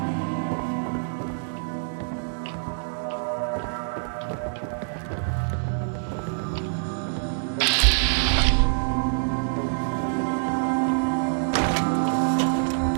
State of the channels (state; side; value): silent; left; digital silence